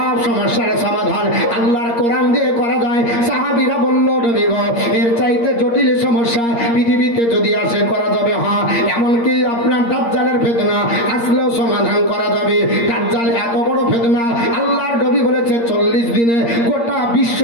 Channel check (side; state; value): right; late; 8.6 ms